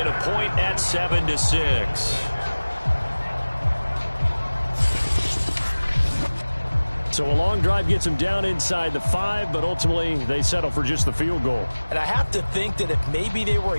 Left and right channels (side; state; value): both; inverted; correlation -1.00